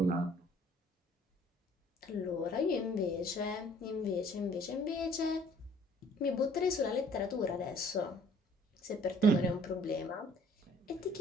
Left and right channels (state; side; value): normal; both; correlation 0.57